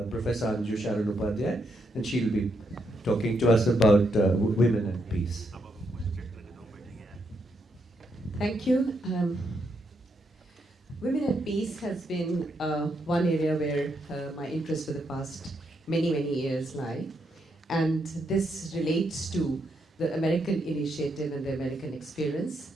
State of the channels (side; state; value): both; normal; correlation 0.79